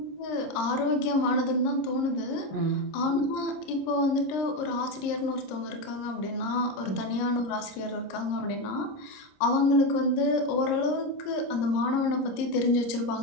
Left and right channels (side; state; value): right; late; 26 ms